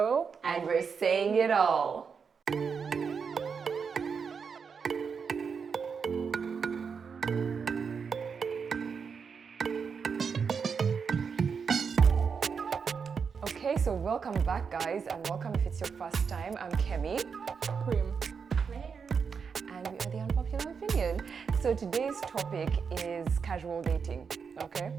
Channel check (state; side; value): quieter; left; 6.0 dB